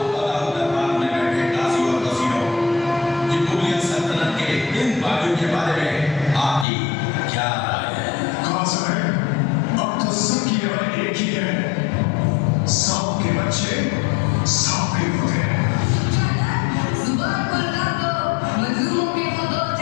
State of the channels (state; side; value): drops out; right; at 6.7 s